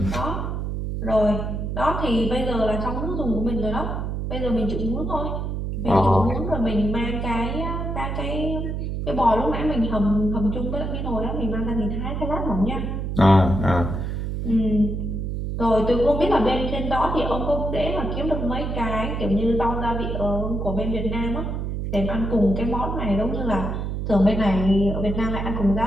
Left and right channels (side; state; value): right; noise; hum, 3 dB below the sound